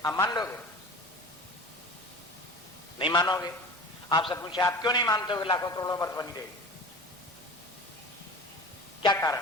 आप मान लोगे? नहीं मानोगे। आपसे पूछे आप क्यों नहीं मानते हो कि लाखों करोड़ों वर्ष बनी रहेगी? क्या कारण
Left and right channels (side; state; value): both; normal; correlation 0.36